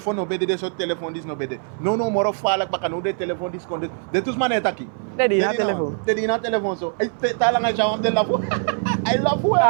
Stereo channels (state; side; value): silent; left; 62 dB below the other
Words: no bede de so telefoon dis no bede. No moro falak baka no de telefoon dis konde. De tous man etaki. De di na telefoon so. Talanga chawam de lafu. I love